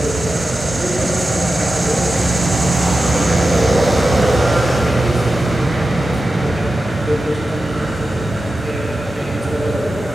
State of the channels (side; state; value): both; normal; correlation 0.92